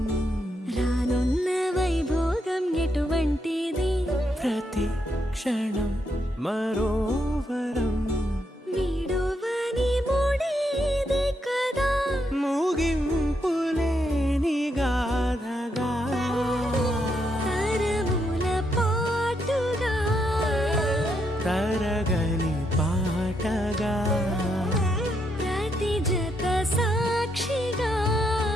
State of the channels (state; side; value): normal; both; correlation 0.78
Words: రానున్న వైభోగం ఎటువంటిది ప్రతి క్షణం మరోవరం వీడోవని మూడేది కదా ముగింపులేని గాథగా తరముల పాటుగా తరగని పాటగా ప్రతి జత సాక్షిగా